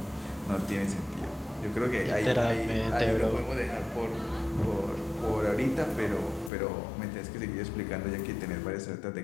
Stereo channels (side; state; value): right; drops out; at 6.5 s